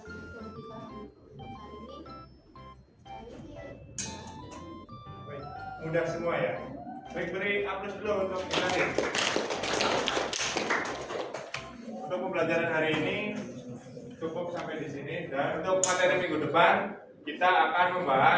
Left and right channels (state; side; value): identical; both; correlation 1.00